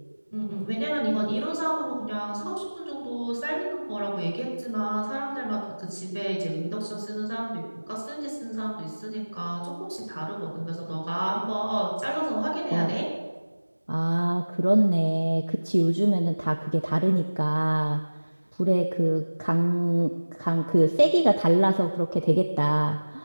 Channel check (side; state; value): both; inverted; correlation -1.00